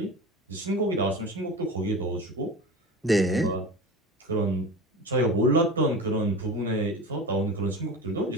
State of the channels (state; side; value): normal; both; correlation 0.31